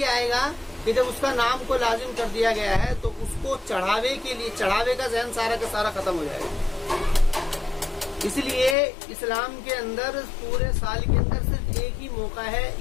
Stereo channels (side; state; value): right; drops out; at 8.8 s